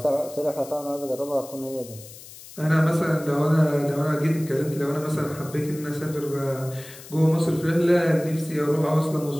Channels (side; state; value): left; noise; hiss, 17 dB below the sound